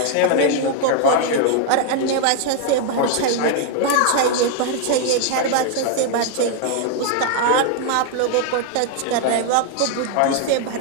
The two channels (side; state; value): both; different; correlation 0.00